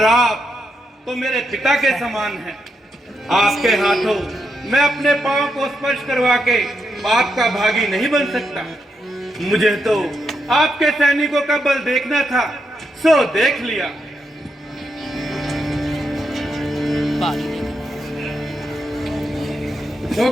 आप तो मेरे पिता के समान हैं। आपके हाथों मैं अपने पांव को स्पर्श करवा के पाप का भागी नहीं बन सकता। मुझे तो आपके सैनिकों का बल देखना था, सो देख लिया। तो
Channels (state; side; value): normal; both; correlation 0.83